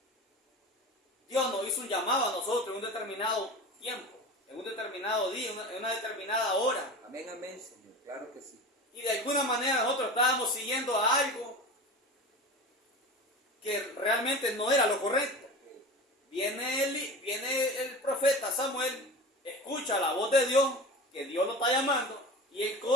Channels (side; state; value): both; normal; correlation 0.32